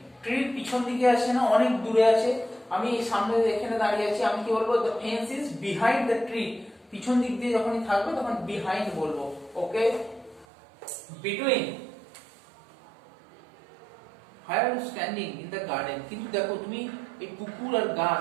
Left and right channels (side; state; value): left; drops out; at 10.5 s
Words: ট্রির পিছন দিকে আছে না, অনেক দূরে আছে। আমি সামনে এখানে দাঁড়িয়ে আছি, আমি কি বলবো? The fence is behind the tree. পিছন দিক দিয়ে যখনই থাকবে তখন বিহাইন্ড বলবো। ওকে, between, Where are you standing in the garden? কিন্তু দেখো তুমি এই পুকুর আর